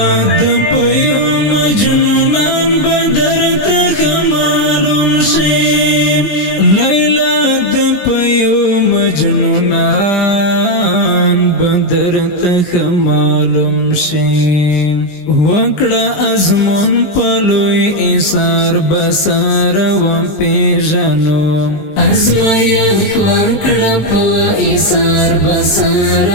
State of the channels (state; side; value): late; right; 19 ms